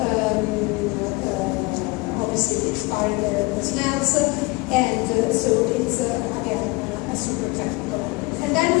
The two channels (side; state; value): right; quieter; 25.3 dB